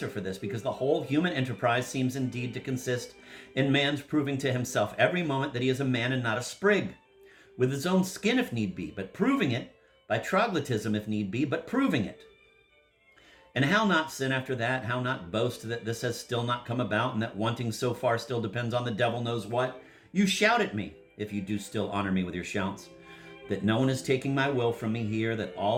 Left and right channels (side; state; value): both; identical; correlation 1.00